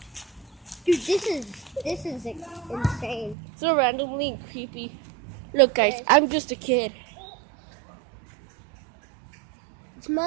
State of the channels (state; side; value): drops out; left; at 3.4 s